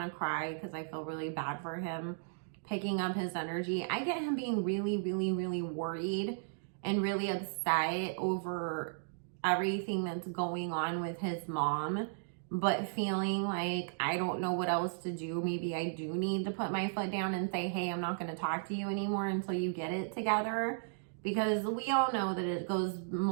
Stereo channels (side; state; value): left; silent; digital silence